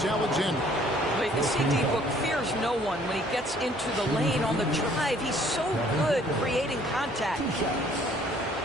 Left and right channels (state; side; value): normal; both; correlation 0.59